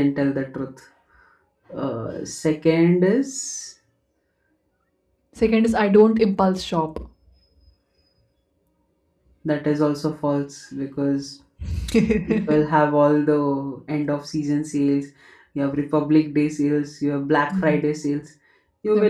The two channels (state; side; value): identical; both; correlation 1.00